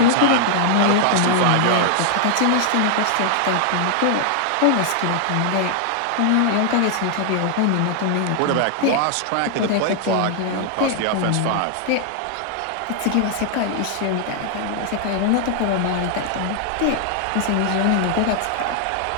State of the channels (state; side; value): different; both; correlation 0.00